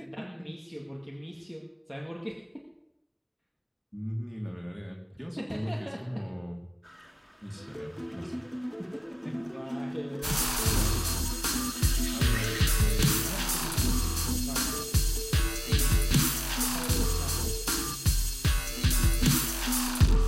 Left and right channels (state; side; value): identical; both; correlation 1.00